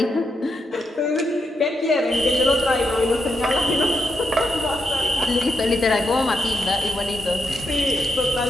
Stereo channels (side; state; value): both; normal; correlation 0.83